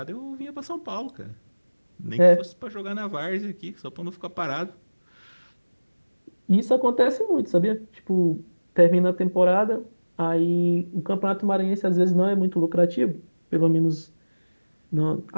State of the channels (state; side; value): inverted; both; correlation -1.00